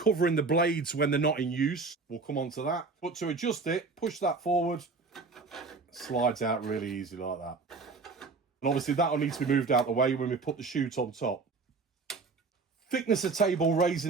the blades when they're not in use. We'll come on to that. But to adjust it, push that forward. Slides out really easy like that. And obviously that'll need to be moved out the way when we put the chute on top. Thicknesser table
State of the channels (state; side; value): quieter; left; 4.2 dB